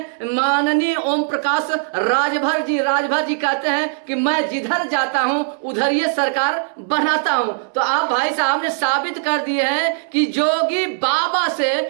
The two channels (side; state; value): left; silent; 65 dB below the other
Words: माननीय ओम प्रकाश राजभर जी। राजभर जी कहते हैं कि मैं जिधर जाता हूं उधर ये सरकार बनाता हूं। तो आप भाई साहब ने साबित कर दिए हैं कि जोगी बाबा से